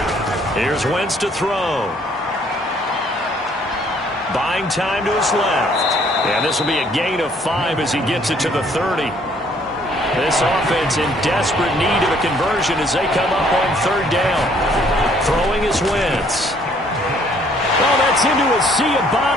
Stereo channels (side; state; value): both; normal; correlation 0.63